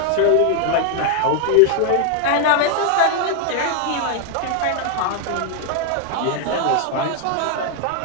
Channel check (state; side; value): different; both; correlation 0.00